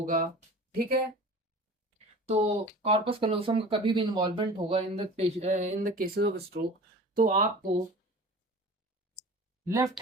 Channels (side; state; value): both; normal; correlation 0.39